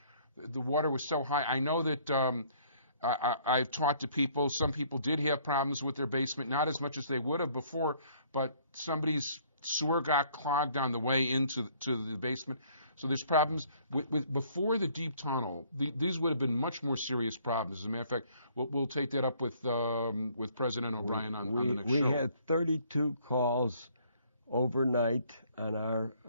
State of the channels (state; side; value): inverted; both; correlation -0.61